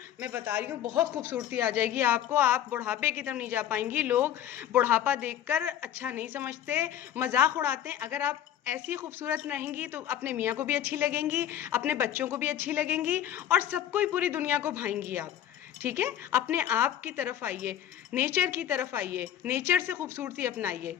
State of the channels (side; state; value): right; quieter; 10.8 dB